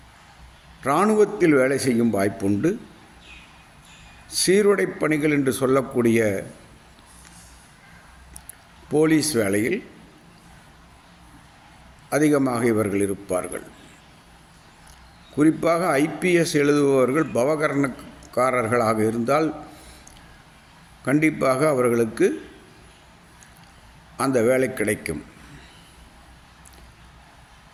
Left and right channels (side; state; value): both; identical; correlation 1.00